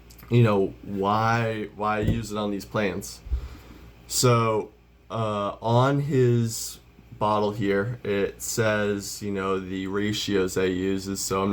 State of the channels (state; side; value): identical; both; correlation 1.00